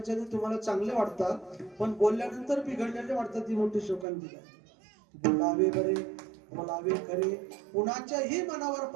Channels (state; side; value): drops out; left; at 4.0 s